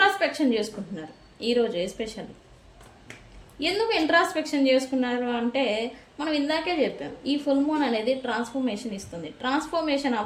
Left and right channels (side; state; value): both; identical; correlation 1.00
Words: చేసుకుంటున్నారు ఈరోజు ఎస్పెషల్లీ. ఎందుకు ఇంట్రాస్పెక్షన్ చేసుకున్నారు అంటే మనం ఇందాకే చెప్పాం, ఈ ఫుల్ మూన్ అనేది ట్రాన్స్ఫర్మేషన్ ఇస్తుంది. ట్రాన్స్ఫర్మేషన్